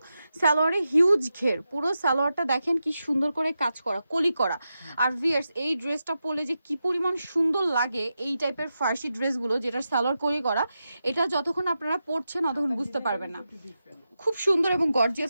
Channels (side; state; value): both; inverted; correlation -0.89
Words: সালোয়ারে হিউজ ঘের। পুরো সালোয়ারটা দেখেন কি সুন্দর করে কাজ করা, কলি করা। আর ভিয়ার্স, এই ড্রেসটা পরলে যে কি পরিমাণ সুন্দর লাগে, এই টাইপের ফার্সি ড্রেসগুলো যেটার সালোয়ার কলি করা, এটা যতক্ষণ আপনারা পরছেন ততক্ষণ বুঝতে পারবেন না। খুব সুন্দর এবং